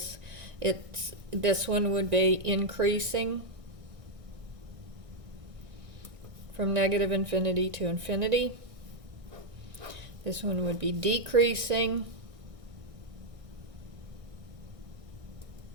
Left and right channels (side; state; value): left; late; 1.6 ms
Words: this one would be increasing from negative infinity to infinity. This one would be decreasing